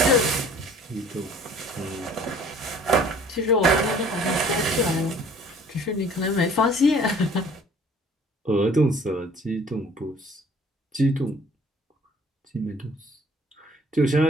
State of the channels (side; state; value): both; normal; correlation 0.53